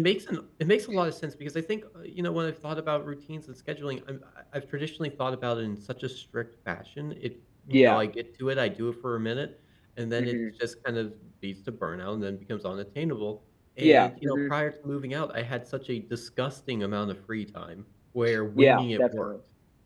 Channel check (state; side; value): identical; both; correlation 1.00